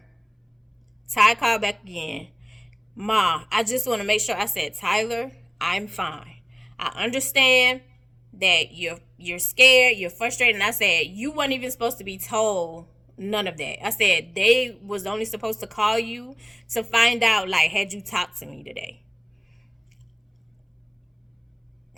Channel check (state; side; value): identical; both; correlation 1.00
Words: Ty called back again. Ma, I just want to make sure. I said, Tyler, I'm fine. I understand that you're scared, you're frustrated. And I said, you weren't even supposed to be told none of that. I said, they was only supposed to call you to find out, like, had you talked to me today?